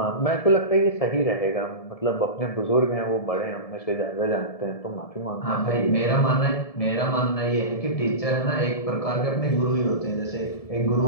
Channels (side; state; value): right; late; 1.7 ms